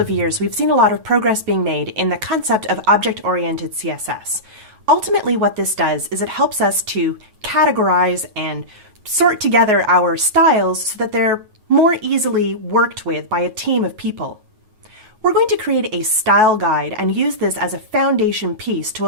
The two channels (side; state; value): left; late; 9.3 ms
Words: years, we've seen a lot of progress being made in the concept of object-oriented CSS. Ultimately, what this does is it helps us to categorize and sort together our styles so that they're more easily worked with by a team of people. We're going to create a style guide and use this as a foundation piece to